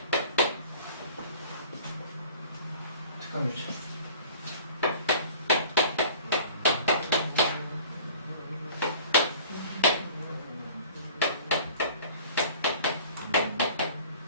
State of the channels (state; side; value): inverted; both; correlation -0.47